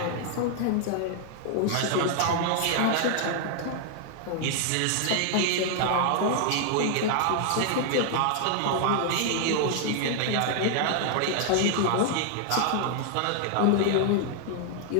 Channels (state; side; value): different; both; correlation 0.00